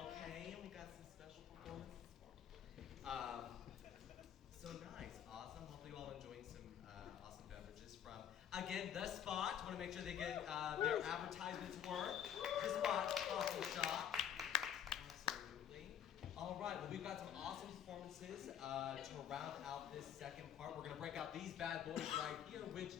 and we got some special performances. So nice, awesome. Hopefully you all are enjoying some awesome beverages from, again, The Spot. Want to make sure they get their advertisements work. The Spot Coffee Shop. Absolutely. All right, well, we've got some awesome performances to round out this second part. We're going to break out these bad boys right here, which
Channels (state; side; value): quieter; right; 9.5 dB